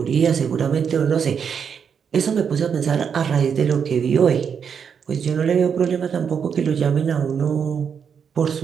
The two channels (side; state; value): left; quieter; 7.0 dB